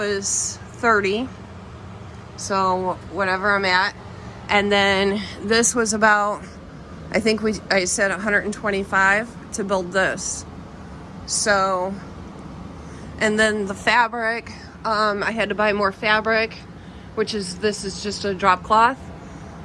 $30. So whatever I'm at. And then this was about, I think I said $125 to build this. So, and then the fabric, I had to buy more fabric, this is just a drop cloth,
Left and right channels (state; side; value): identical; both; correlation 1.00